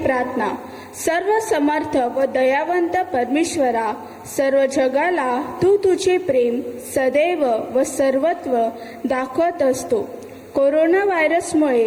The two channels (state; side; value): identical; both; correlation 1.00